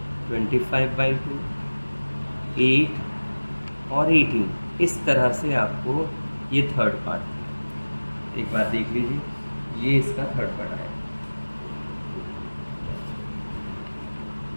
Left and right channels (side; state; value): both; inverted; correlation -1.00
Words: 25/2, 8 और 18। इस तरह से आपको ये थर्ड पार्ट, एक बार देख लीजिए, ये इसका थर्ड पार्ट आया।